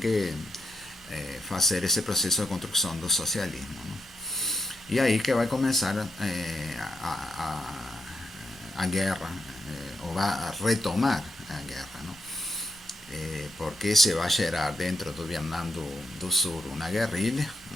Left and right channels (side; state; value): both; normal; correlation 0.80